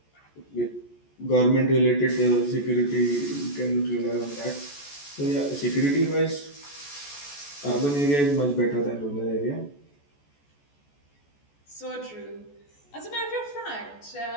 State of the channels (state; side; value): late; right; 14 ms